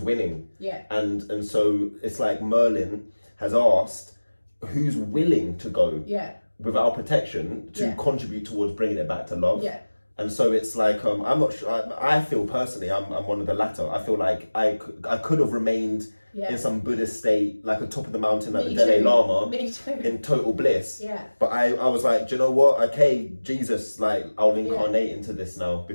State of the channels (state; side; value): inverted; both; correlation -1.00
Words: winning. Yeah. And so it's like Merlin has asked who's willing to go with our protection to contribute towards bringing it back to love. Yeah. And so it's like I'm not sure. I feel personally I'm one of the latter. I feel like I could have remained in some Buddhist state, like on top of the mountain, like the Dalai Lama, in total bliss. Yeah. But I was like, do you know what? Okay, Jesus, like I'll incarnate into this now